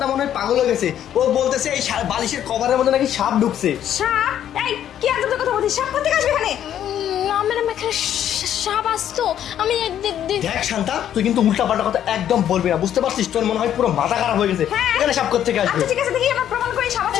মনে হয় পাগল হয়ে গেছে। ও বলতেছে এই বালিশের কভারের মধ্যে নাকি সাপ ঢুকছে। সাপ? এই কি আজব কথা বলছিস? সাপ কোথা থেকে আসবে এখানে? না ম্যাডাম, এখানে সাপ আসতো। আমি দেখ শান্তা, তুই কিন্তু উল্টাপাল্টা কথা একদম বলবি না, বুঝতে পারছিস? তোর মনে হয় পুরো মাথা খারাপ হয়ে গেছে। হ্যাঁ। এখানে সাপ করতে আসবে? আচ্ছা ঠিক আছে, দেখি আমরা প্রমাণ করি সাপ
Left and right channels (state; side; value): quieter; right; 10.5 dB